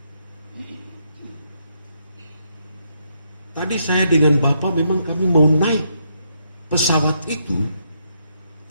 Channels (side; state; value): both; inverted; correlation -0.77